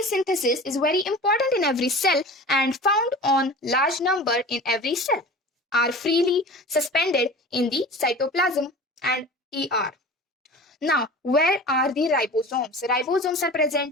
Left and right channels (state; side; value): normal; both; correlation 0.37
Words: synthesis is very important in every cell and found on large number in every cell, are freely suspended in the cytoplasm and ER. Now, where are the ribosomes? Ribosomes are